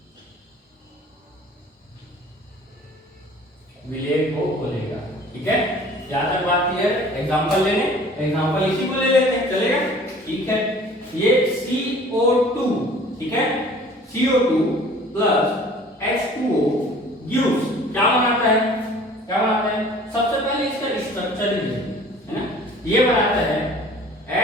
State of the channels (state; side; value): normal; both; correlation 0.49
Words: विलेय को घोलेगा। ठीक है, यहां तक बात क्लियर। एग्जांपल लेने, एग्जांपल इसी को ले लेते हैं, चलेगा। ठीक है, ये CO2, ठीक है, CO2 प्लस H2O गिव्स क्या बनाता है, क्या बनाता है, सबसे पहले इसका स्ट्रक्चर ही है ना, ये बनाता है